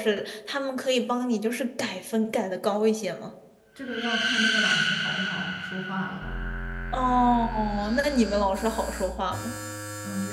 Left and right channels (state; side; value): identical; both; correlation 1.00